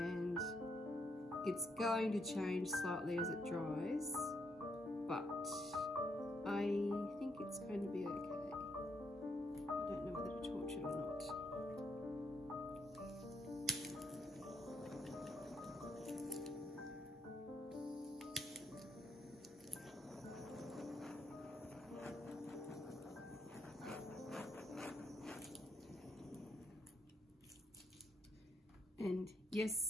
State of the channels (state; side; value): normal; both; correlation 0.77